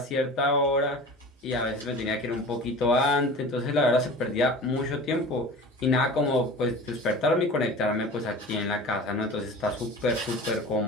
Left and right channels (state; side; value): normal; both; correlation 0.37